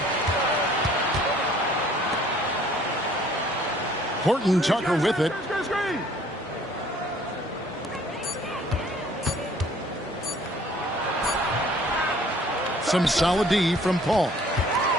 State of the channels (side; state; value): both; normal; correlation 0.56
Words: Horton Tucker with it. Some solid D from Paul.